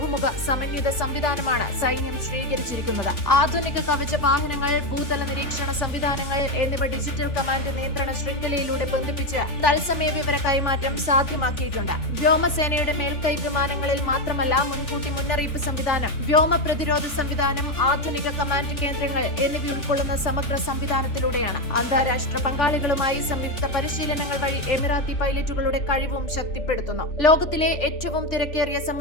സമന്വിത സംവിധാനമാണ് സൈന്യം സ്വീകരിച്ചിരിക്കുന്നത്. ആധുനിക കവച വാഹനങ്ങൾ, ഭൂതല നിരീക്ഷണ സംവിധാനങ്ങൾ എന്നിവ ഡിജിറ്റൽ കമാൻഡ് നിയന്ത്രണ ശൃംഖലയിലൂടെ ബന്ധിപ്പിച്ച് തത്സമയ വിവര കൈമാറ്റം സാധ്യമാക്കിയിട്ടുണ്ട്. വ്യോമസേനയുടെ മേൽക്കൈ വിമാനങ്ങളിൽ മാത്രമല്ല, മുൻകൂട്ടി മുന്നറിയിപ്പ് സംവിധാനം, വ്യോമ പ്രതിരോധ സംവിധാനം, ആധുനിക കമാൻഡ് കേന്ദ്രങ്ങൾ എന്നിവ ഉൾക്കൊള്ളുന്ന സമഗ്ര സംവിധാനത്തിലൂടെയാണ്. അന്താരാഷ്ട്ര പങ്കാളികളുമായി സംയുക്ത പരിശീലനങ്ങൾ വഴി എമിറാത്തി പൈലറ്റുകളുടെ കഴിവും ശക്തിപ്പെടുത്തുന്നു. ലോകത്തിലെ ഏറ്റവും തിരക്കേറിയ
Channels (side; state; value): right; late; 3.4 ms